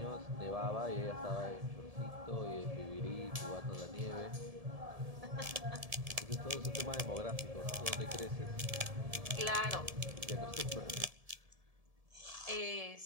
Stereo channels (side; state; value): left; late; 1.7 ms